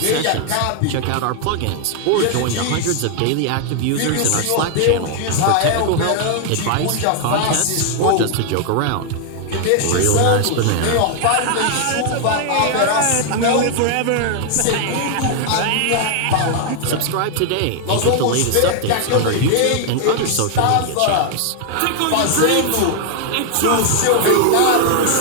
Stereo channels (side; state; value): both; different; correlation 0.00